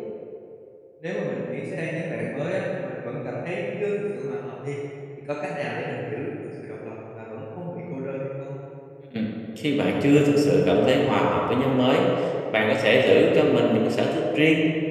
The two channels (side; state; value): both; identical; correlation 1.00